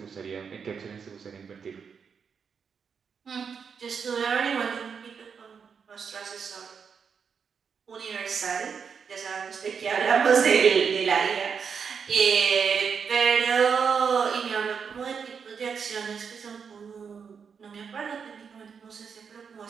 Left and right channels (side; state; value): left; quieter; 6.4 dB